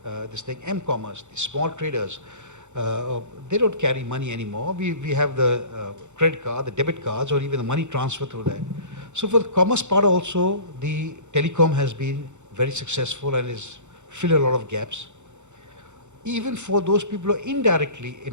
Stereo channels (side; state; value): left; late; 0.84 ms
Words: this thing, M-commerce, the small traders, they don't carry money anymore. We have the credit card, the debit cards, or even the money transfer through that. So for the commerce part also, the telecom has been very successful and is filled a lot of gaps. Even for those people who are indirectly